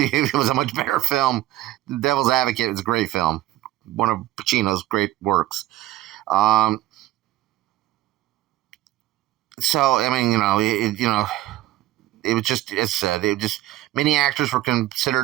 was a much better film. The Devil's Advocate was a great film, one of Pacino's great works. So I mean, it was just, as I said, many actors were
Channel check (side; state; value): left; quieter; 15.4 dB